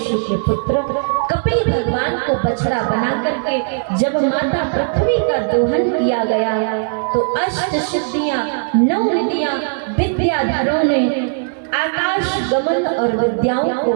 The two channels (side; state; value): left; silent; 67 dB below the other